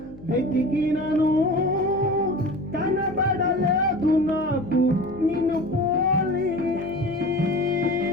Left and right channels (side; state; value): left; noise; hum, 19 dB below the sound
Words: వెతికినను కనబడలేదు నాకు నిన్ను పోలి